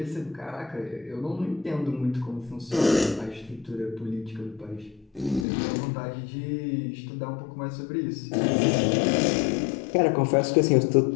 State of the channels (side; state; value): right; drops out; at 5.5 s